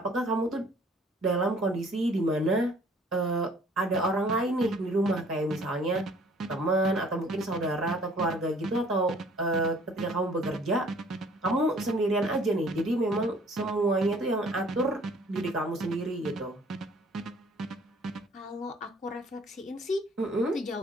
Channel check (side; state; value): both; normal; correlation 0.56